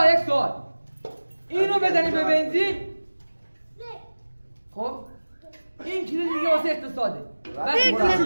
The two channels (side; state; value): both; inverted; correlation -1.00